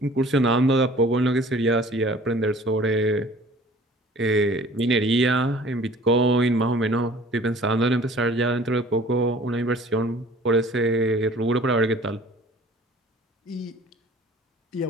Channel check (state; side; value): normal; both; correlation 0.49